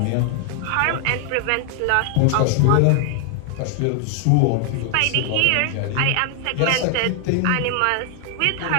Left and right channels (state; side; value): different; both; correlation 0.00